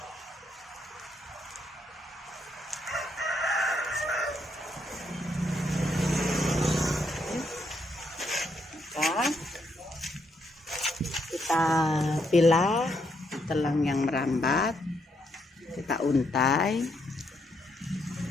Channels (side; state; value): both; normal; correlation 0.76